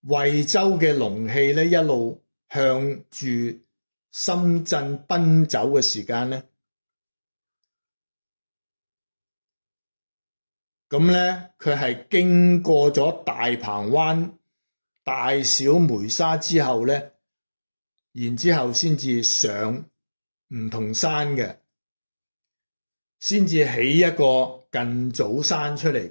惠州嘅龍氣呢一路向住深圳奔走嘅時間呢，咁呢佢係經過咗大鵬灣、大小梅沙之後呢，然之後先至上梧桐山嘅，先至起一個近早山出嚟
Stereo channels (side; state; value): both; inverted; correlation -1.00